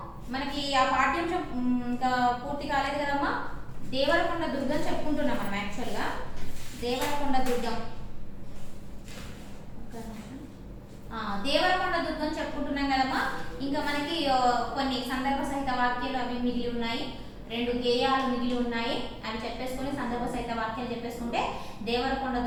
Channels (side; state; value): both; identical; correlation 1.00